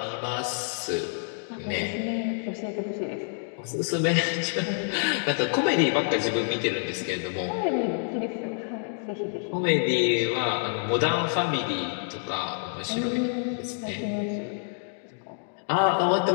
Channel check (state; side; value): silent; right; 58 dB below the other